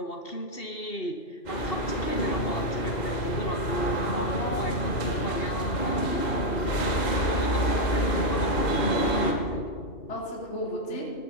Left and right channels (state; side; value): late; right; 2.1 ms